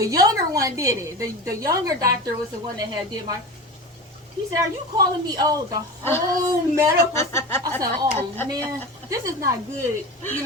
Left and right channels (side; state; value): both; normal; correlation 0.29